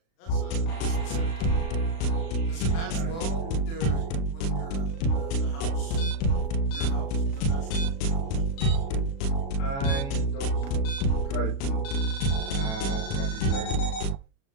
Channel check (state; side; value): late; right; 36 ms